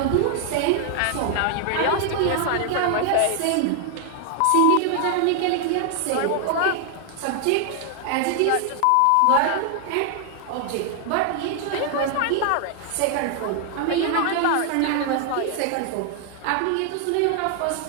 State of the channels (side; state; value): both; different; correlation 0.00